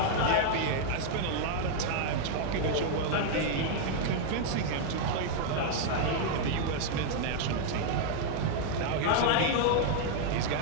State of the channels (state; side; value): different; both; correlation 0.00